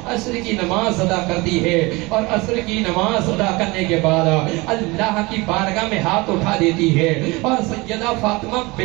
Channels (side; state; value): left; quieter; 23.8 dB